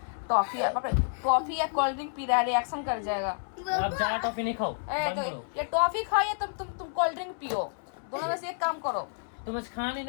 टॉफी या कोल्ड ड्रिंक पी रहा है, रिएक्शन कर जाएगा। आप ज्यादा टॉफी नहीं खाओ, ए, बंद तो करो। ये टॉफी खाओ या तुम कोल्ड ड्रिंक पियो, दोनों में से एक काम करो। तुम आज खाना नहीं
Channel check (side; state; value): right; silent; 58 dB below the other